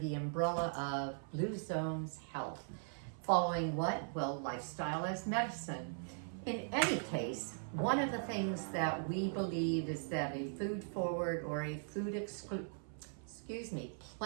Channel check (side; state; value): left; silent; 51 dB below the other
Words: umbrella of Blue Zones Health. Following what? Well, lifestyle as medicine. In any case, one of the things that we believe is that a food forward or a